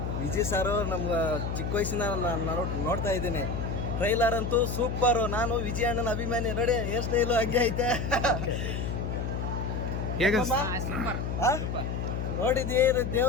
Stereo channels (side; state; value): left; noise; hum, 3 dB below the sound